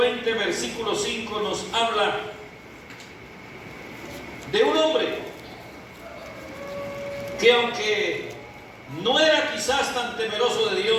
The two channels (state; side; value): identical; both; correlation 1.00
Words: versículo 5 nos habla de un hombre que, aunque no era quizás tan temeroso de